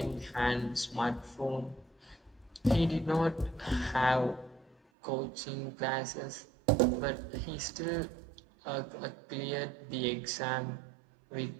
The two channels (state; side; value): drops out; left; at 4.8 s